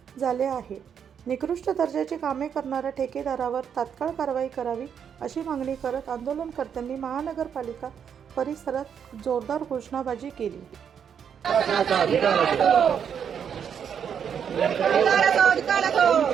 झाले आहे. निकृष्ट दर्जाची कामे करणाऱ्या ठेकेदारावर तात्काळ कारवाई करावी अशी मागणी करत आंदोलनकर्त्यांनी महानगरपालिका परिसरात जोरदार घोषणाबाजी केली.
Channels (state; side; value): quieter; left; 7.8 dB